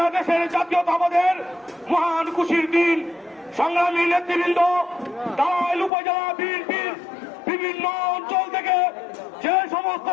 জাতীয়তাবাদের মহান খুশির দিন। সংগ্রামী নেতৃবৃন্দ, টাঙ্গাইল উপজেলা বিএনপির বিভিন্ন অঞ্চল থেকে যে সমস্ত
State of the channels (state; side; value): drops out; right; at 5.9 s